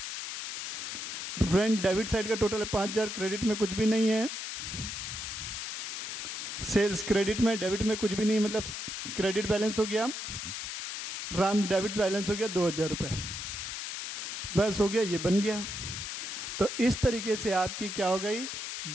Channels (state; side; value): noise; left; hiss, 6 dB below the sound